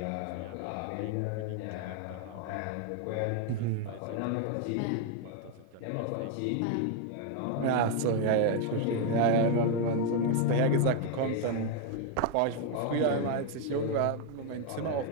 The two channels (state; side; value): different; both; correlation 0.01